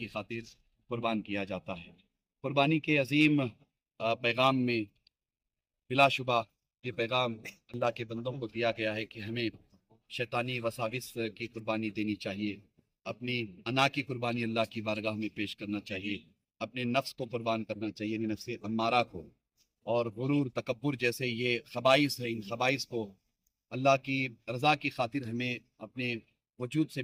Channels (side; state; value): both; identical; correlation 1.00